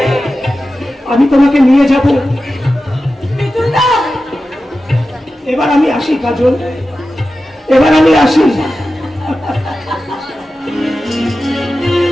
আমি তোমাকে নিয়ে যাব। এবার আমি আসি কাজল, এবার আমি আসি।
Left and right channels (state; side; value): normal; both; correlation 0.93